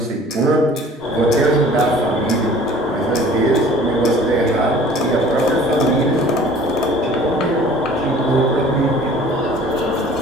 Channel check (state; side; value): normal; both; correlation 0.48